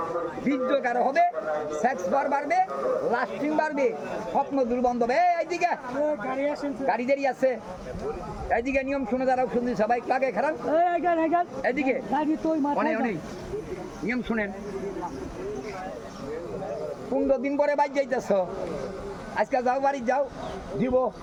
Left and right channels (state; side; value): identical; both; correlation 1.00